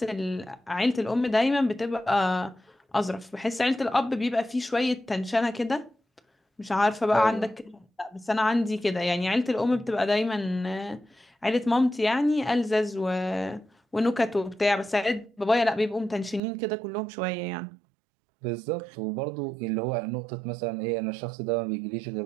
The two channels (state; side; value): drops out; left; at 16.4 s